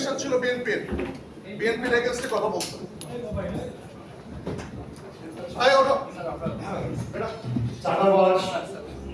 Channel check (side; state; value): both; identical; correlation 1.00